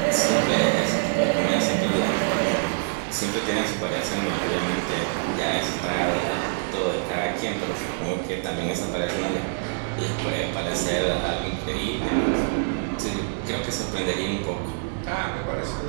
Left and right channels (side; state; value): left; silent; 62 dB below the other